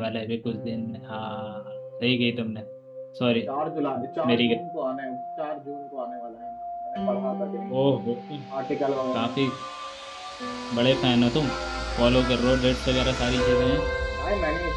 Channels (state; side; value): identical; both; correlation 1.00